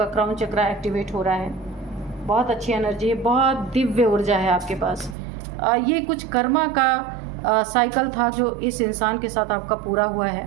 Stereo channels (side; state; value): left; drops out; at 5.2 s